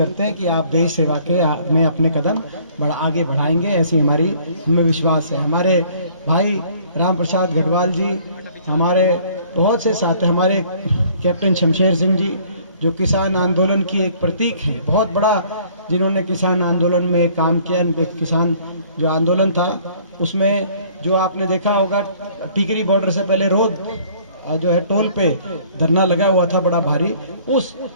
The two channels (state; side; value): inverted; both; correlation -0.57